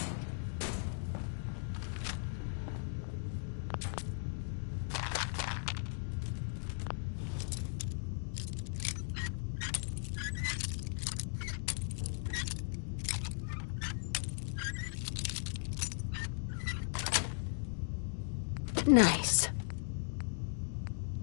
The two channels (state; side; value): silent; right; digital silence